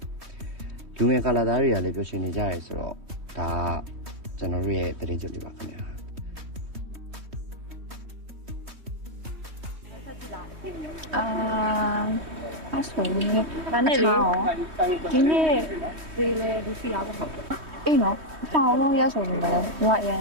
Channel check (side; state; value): left; late; 3.2 ms